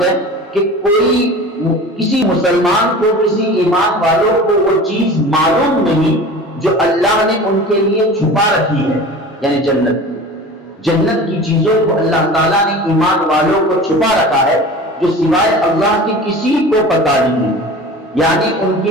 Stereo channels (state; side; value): normal; both; correlation 0.37